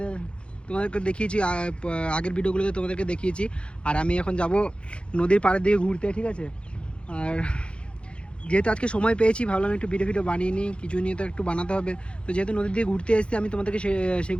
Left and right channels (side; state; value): right; late; 0.057 ms